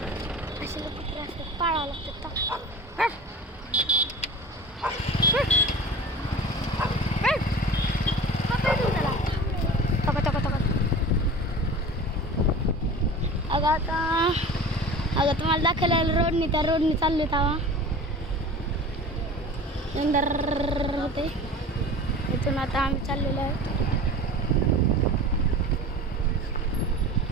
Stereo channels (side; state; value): both; normal; correlation 0.37